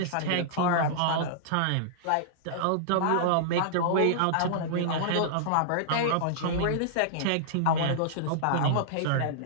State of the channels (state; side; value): different; both; correlation -0.02